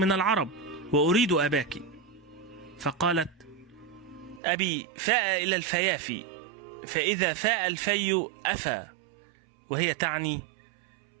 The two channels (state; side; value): drops out; left; at 4.4 s